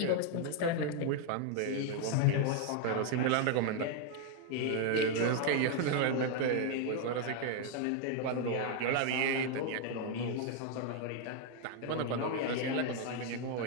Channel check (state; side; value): different; both; correlation 0.00